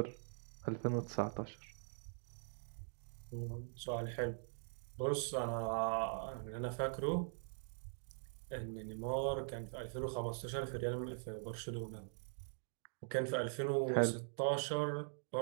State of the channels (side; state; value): left; silent; digital silence